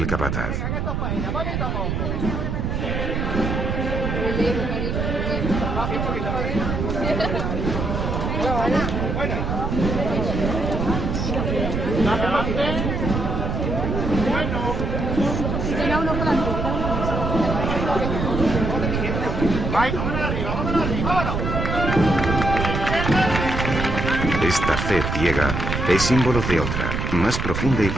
capataz. Esta fe ciega es símbolo de otra, más profunda y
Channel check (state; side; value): noise; right; rumble, 2 dB below the sound